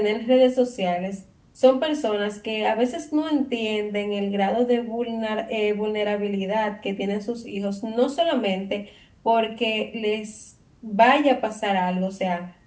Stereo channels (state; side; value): identical; both; correlation 1.00